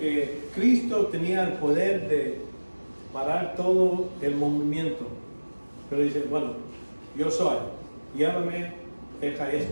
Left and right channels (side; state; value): both; inverted; correlation -1.00